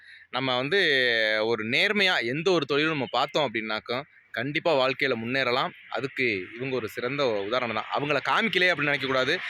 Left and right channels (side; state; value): both; identical; correlation 1.00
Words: நம்ம வந்து ஒரு நேர்மையாக எந்த ஒரு தொழிலும் நம்ம பார்த்தோம் அப்படின்னாக்கா கண்டிப்பாக வாழ்க்கையில் முன்னேறலாம். அதுக்கு இவங்க ஒரு சிறந்த உதாரணம் தான். அவங்கள காமிக்கலையே அப்படின்னு நினைக்கக்கூடாது.